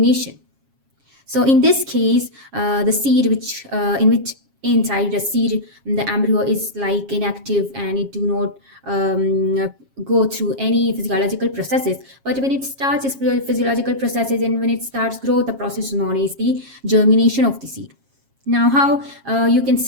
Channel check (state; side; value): late; left; 7.4 ms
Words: So in this case, the seed in which inside the seed the embryo is like inactive and it do not go through any physiological processes, but when it starts its physiological processes and when it starts growth, the process is known as the germination of the seed. Now, how you can